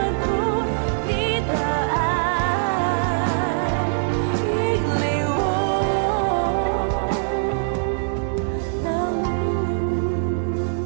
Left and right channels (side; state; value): left; silent; 61 dB below the other